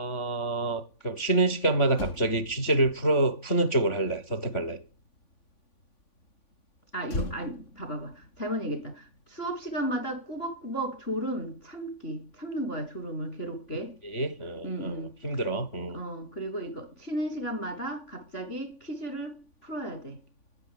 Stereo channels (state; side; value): late; right; 3.5 ms